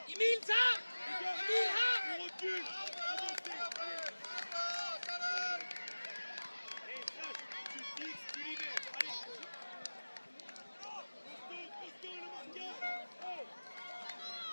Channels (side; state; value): both; inverted; correlation -1.00